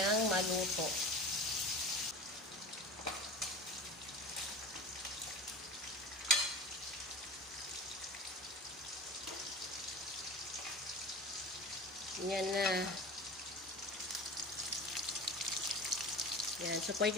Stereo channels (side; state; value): both; normal; correlation 0.34